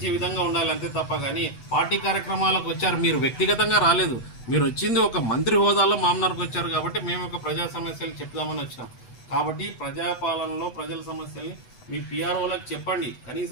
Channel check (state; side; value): late; right; 8.0 ms